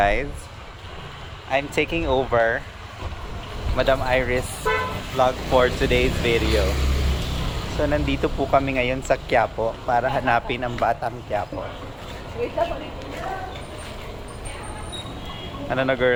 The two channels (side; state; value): both; identical; correlation 1.00